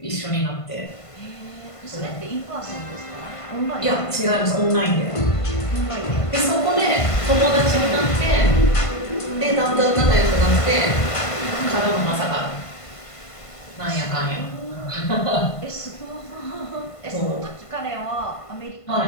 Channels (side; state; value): right; late; 1.5 ms